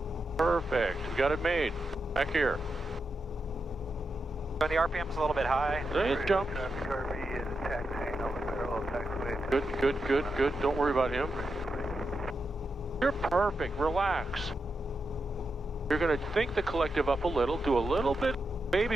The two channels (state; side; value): normal; both; correlation 0.87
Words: Perfect. We got it made. Back here. So the RPM's a little bit high. It jumped. Traffic RV is taxiing over parallel taxiway. Good, good, good, good. Don't worry about him. You're perfect. Relax. You're going to think the collective up a little. Do a little bit. Maybe